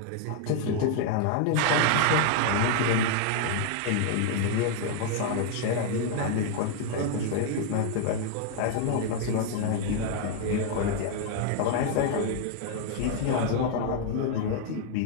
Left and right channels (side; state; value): both; different; correlation 0.00